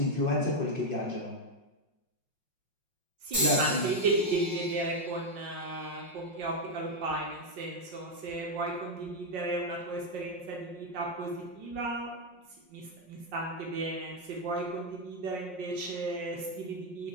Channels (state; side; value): late; left; 5.5 ms